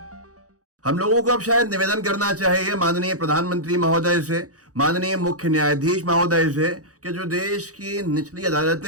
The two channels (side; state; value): left; late; 0.66 ms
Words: हम लोगों को अब शायद निवेदन करना चाहिए माननीय प्रधानमंत्री महोदय से, माननीय मुख्य न्यायाधीश महोदय से, कि जो देश की निचली